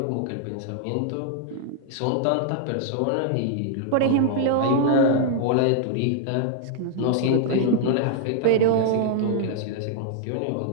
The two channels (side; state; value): both; different; correlation -0.01